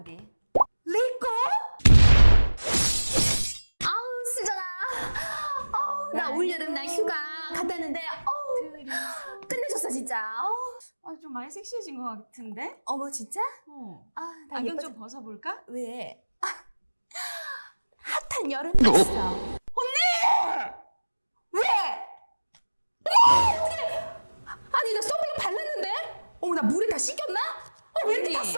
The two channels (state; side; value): inverted; both; correlation -1.00